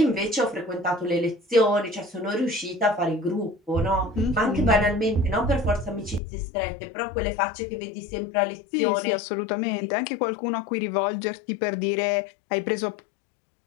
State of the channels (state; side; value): drops out; right; at 6.2 s